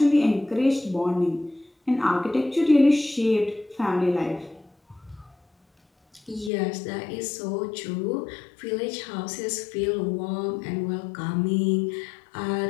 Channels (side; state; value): right; drops out; at 6.5 s